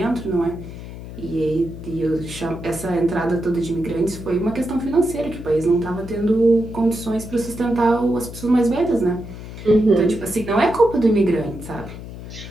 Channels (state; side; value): noise; left; hum, 12 dB below the sound